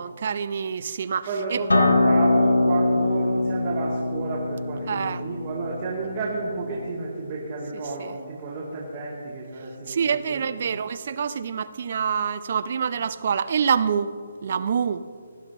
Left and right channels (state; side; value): inverted; both; correlation -0.82